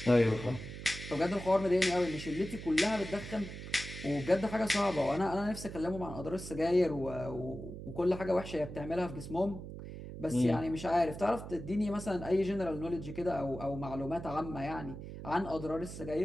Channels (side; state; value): right; noise; hum, 10 dB below the sound